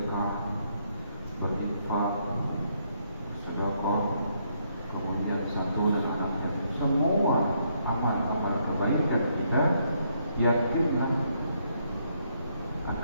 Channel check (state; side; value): inverted; both; correlation -0.73